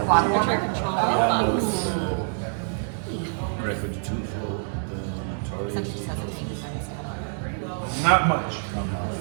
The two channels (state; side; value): silent; left; digital silence